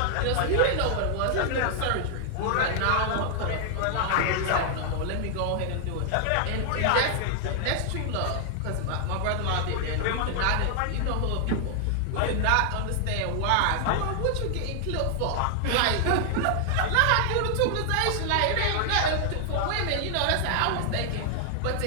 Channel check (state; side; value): different; both; correlation 0.00